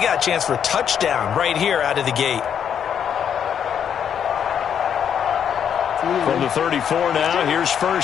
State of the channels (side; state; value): right; quieter; 8.4 dB